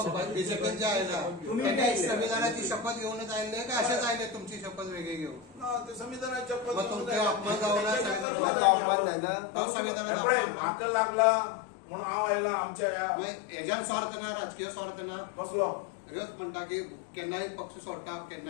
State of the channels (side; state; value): right; drops out; at 8.2 s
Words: बीजेपी जे आयला तुम्ही संविधानाची शपथ घेऊनच आले का असेच आले तुमची शपथ वेगळी घेऊन संविधानाची शपथ तुमचे अपमान जाऊ संविधानाला म्हाका लागला म्हणून हांव आयला आमच्या हेज्यान स्वार्थ ना राजकीय स्वार्थ ना कसलो ह्योच म्हणटा की केन्नाय पक्ष सोडटा